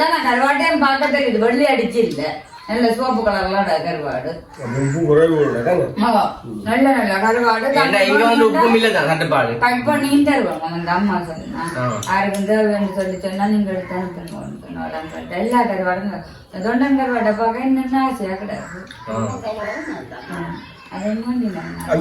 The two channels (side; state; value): both; identical; correlation 1.00